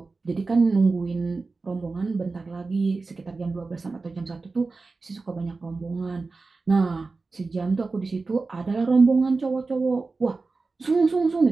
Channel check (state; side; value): quieter; left; 3.9 dB